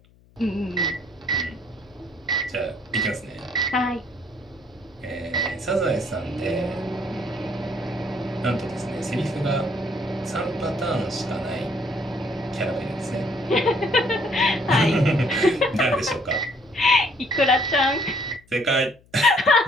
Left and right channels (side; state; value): left; noise; hum, 29 dB below the sound